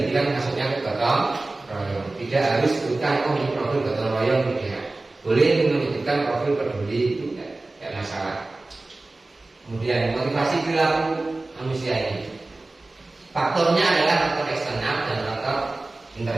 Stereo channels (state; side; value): quieter; left; 3.1 dB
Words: kan masuknya ke gotong royong. Tidak harus sebutkan ini profil gotong royong, tidak. Boleh menyebutkan profil peduli, itu tidak masalah. Kemudian motivasi perilaku manusia ini, faktornya adalah faktor eksternal dan faktor